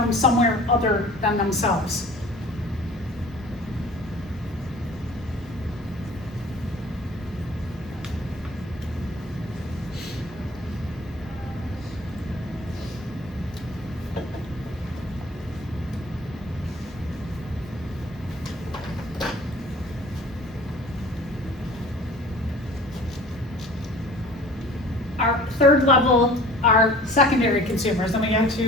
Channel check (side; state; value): both; normal; correlation 0.46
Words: somewhere other than themselves. Our third level are secondary consumers. Then we go